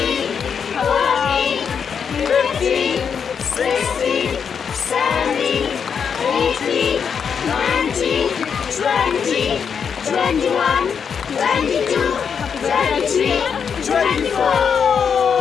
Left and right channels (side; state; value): right; quieter; 6.8 dB